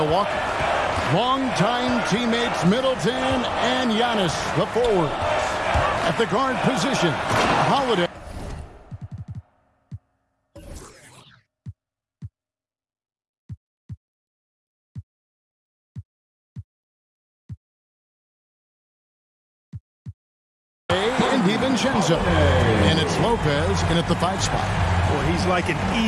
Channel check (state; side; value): identical; both; correlation 1.00